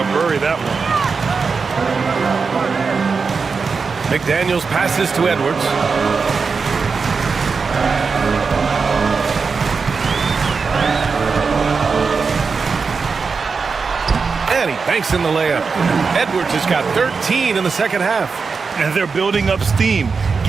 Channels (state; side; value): quieter; left; 5.0 dB